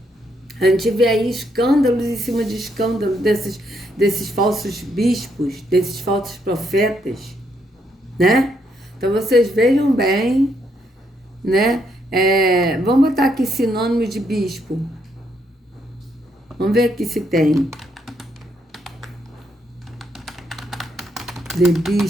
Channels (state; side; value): normal; both; correlation 0.75